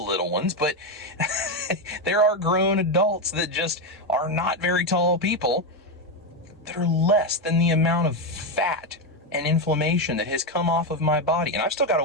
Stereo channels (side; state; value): both; normal; correlation 0.09